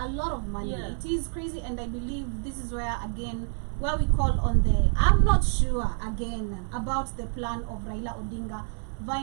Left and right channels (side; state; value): left; silent; 56 dB below the other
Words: lot of money. Yeah. It is crazy, and I believe this is where again where we call on the. I'm not sure again about the plan of Raila Odinga